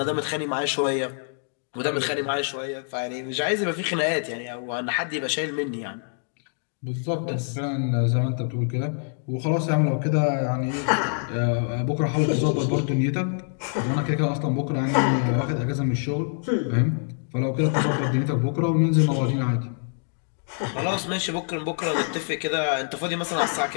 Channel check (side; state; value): right; silent; 61 dB below the other